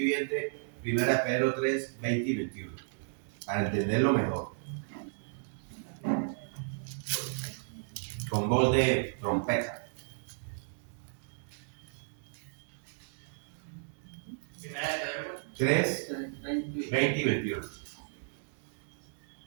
1 de Pedro 3:20 y 21. Para entenderlo mejor. Con voz de trompeta. 3, 20 y 21.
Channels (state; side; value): silent; left; digital silence